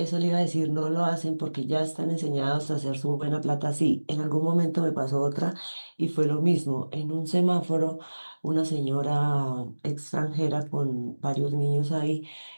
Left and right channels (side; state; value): both; inverted; correlation -1.00